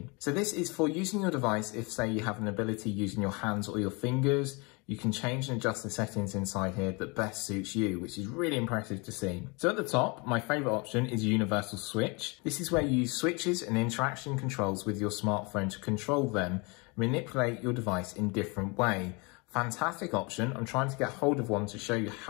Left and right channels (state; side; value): quieter; right; 29.1 dB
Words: So this is for using your device if, say, you have an ability using your hands or your fingers. you can change and adjust the settings inside here that best suits you, which is really impressive to see. So at the top, my favorite option is Universal Switch. This is where you use switches and interaction controls with your smartphone to control them, manipulate your device in different way. Fantastic option. I'm trying to get hold of one to show you